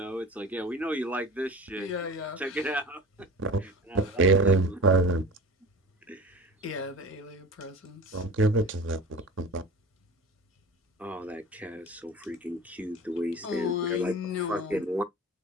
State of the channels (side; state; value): both; normal; correlation 0.35